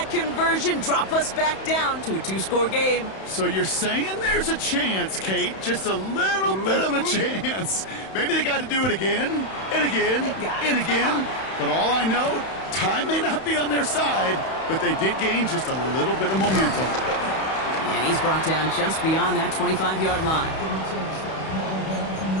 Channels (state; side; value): late; right; 31 ms